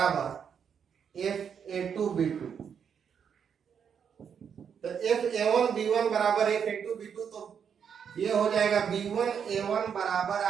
f a two b two, तो f a one b one बराबर f a two b two, तो ये हो जाएगा बी वन ए वन बराबर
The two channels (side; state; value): left; quieter; 7.4 dB